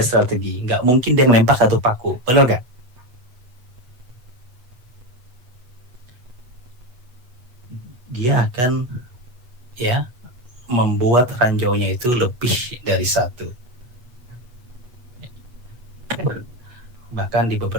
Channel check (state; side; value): late; left; 8.2 ms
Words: strategi. Nggak mungkin dia ngelempar satu paku, bener nggak? Dia akan, ya, membuat ranjaunya itu lebih dari satu. Bahkan di